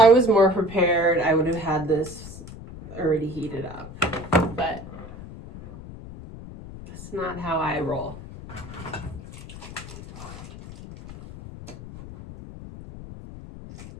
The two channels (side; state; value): left; noise; rumble, 14 dB below the sound